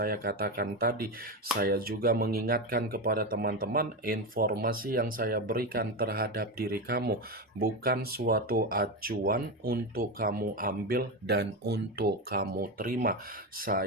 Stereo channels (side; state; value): both; normal; correlation 0.16